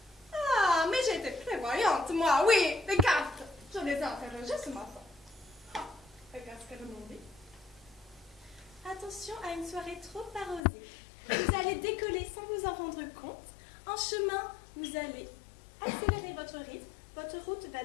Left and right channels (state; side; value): drops out; right; at 10.6 s